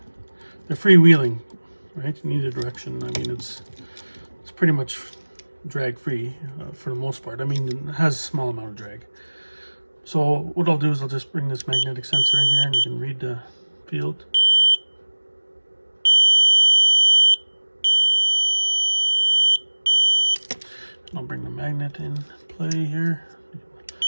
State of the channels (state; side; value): inverted; both; correlation -1.00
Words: freewheeling, right, in either direction. I mean, it's pretty much drag free for the most part. I mean, it has a small amount of drag. So what I'll do is I'll just bring this magnetic sensor in here, and you can read the field. I'll bring the magnet in play here.